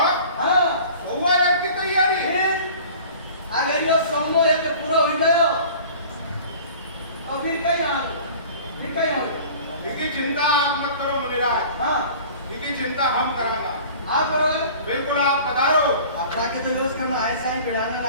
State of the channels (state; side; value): inverted; both; correlation -0.44